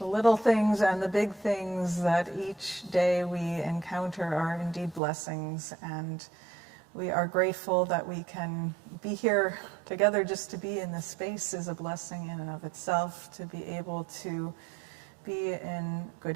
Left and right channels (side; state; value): left; drops out; at 5.0 s